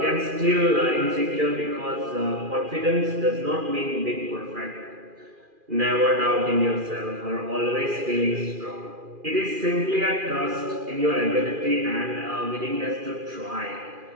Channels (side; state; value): left; late; 2.4 ms